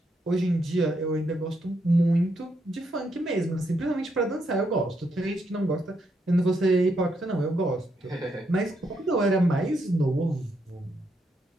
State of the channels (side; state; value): both; normal; correlation 0.78